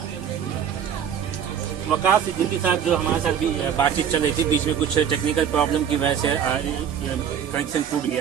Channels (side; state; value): left; quieter; 8.5 dB